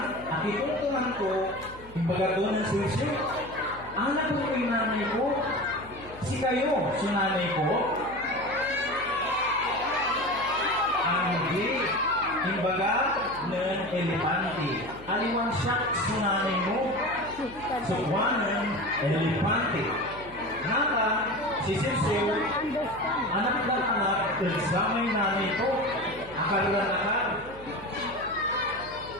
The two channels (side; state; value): left; noise; hum, 18 dB below the sound